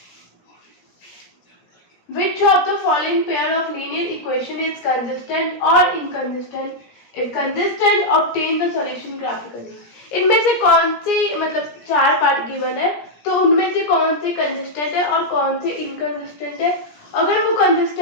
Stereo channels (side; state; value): right; late; 17 ms